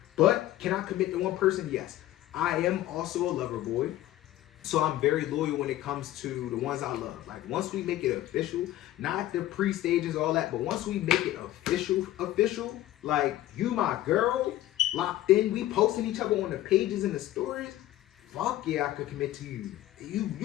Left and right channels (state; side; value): quieter; right; 14.5 dB